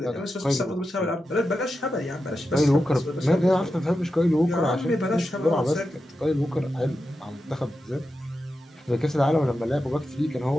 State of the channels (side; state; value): both; normal; correlation 0.90